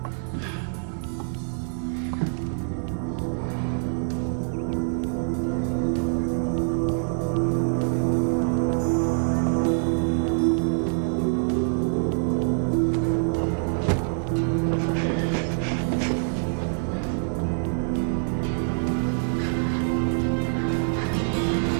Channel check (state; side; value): silent; left; digital silence